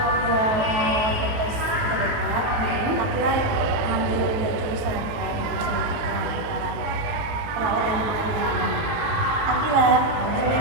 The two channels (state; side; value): late; left; 18 ms